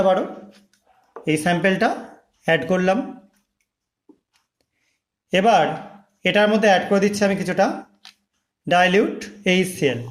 পারো। এই স্যাম্পেলটা অ্যাড করলাম। এবার এটার মধ্যে অ্যাড করে দিচ্ছি আমি কিছুটা ডাইলিউট HCl,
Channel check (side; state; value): both; identical; correlation 1.00